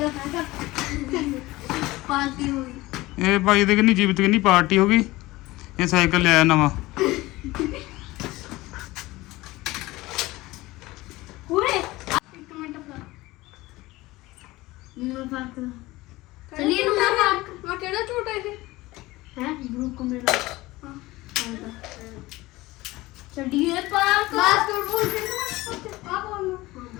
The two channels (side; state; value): right; quieter; 19.4 dB